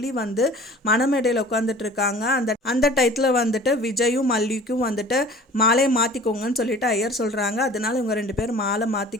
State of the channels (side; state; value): both; normal; correlation 0.45